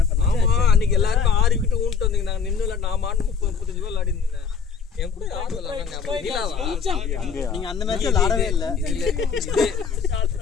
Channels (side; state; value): right; quieter; 6.3 dB